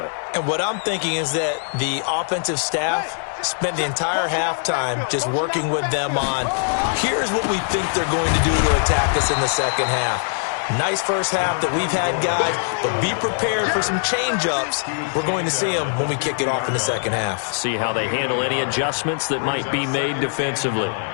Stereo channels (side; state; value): right; silent; digital silence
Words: And what I'm thinking is that the offensive staff spent the entire halftime just working with them on, here's what we think they're going to do to attack us in the second half. Nice first half that we've had, guys, but be prepared for some change-ups. We're going to see them when we kick it off in the second half. See how they handle any adjustments that might be made defensively.